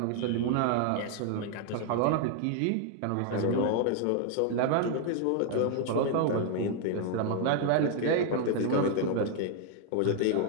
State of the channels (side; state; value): both; different; correlation 0.00